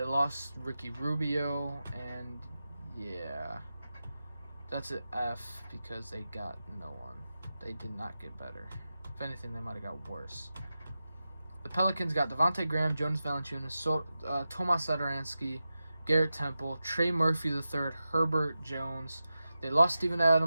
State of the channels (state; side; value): inverted; both; correlation -0.92